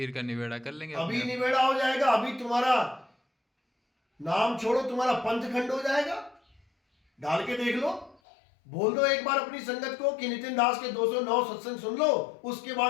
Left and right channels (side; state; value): right; drops out; at 8.2 s